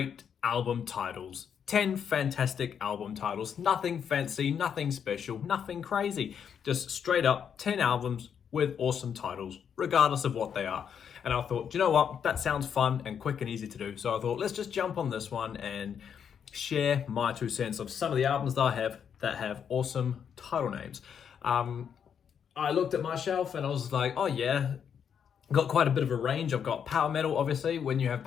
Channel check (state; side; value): quieter; right; 7.8 dB